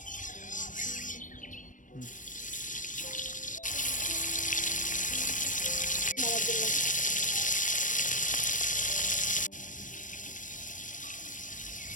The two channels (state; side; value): late; right; 0.37 ms